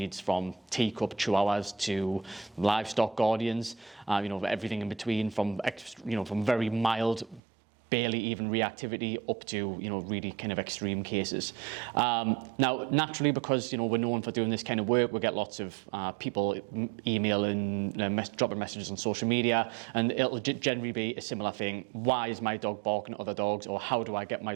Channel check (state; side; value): drops out; left; at 7.4 s